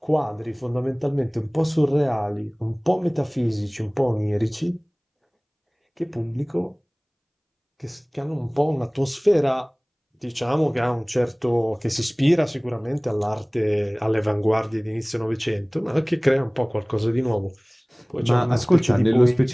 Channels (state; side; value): identical; both; correlation 1.00